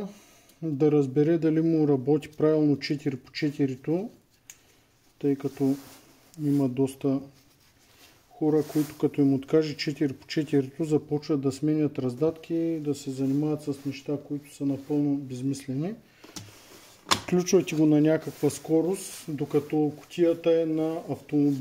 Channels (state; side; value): identical; both; correlation 1.00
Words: да разбере дали му работи правилно 4x4-то, тъй като има доста хора, които като им откаже 4x4-то започват да сменят раздатки и да се занимават с неща, които са напълно безмислени. Включвайте го на някаква скорост, докато кутията е на